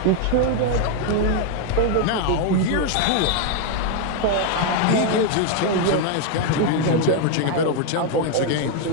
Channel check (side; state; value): both; different; correlation 0.01